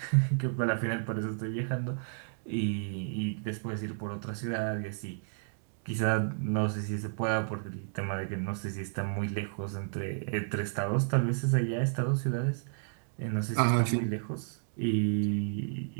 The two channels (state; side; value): silent; left; digital silence